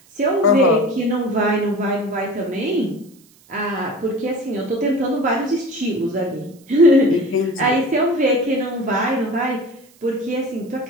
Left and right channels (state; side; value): noise; right; hiss, 29 dB below the sound